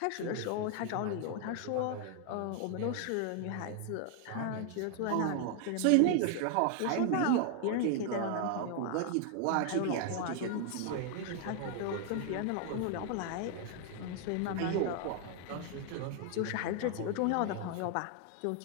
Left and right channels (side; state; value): both; different; correlation 0.00